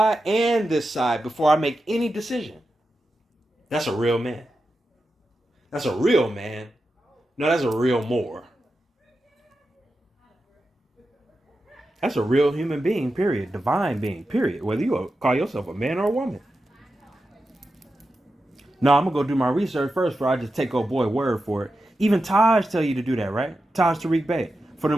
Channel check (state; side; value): normal; both; correlation 0.90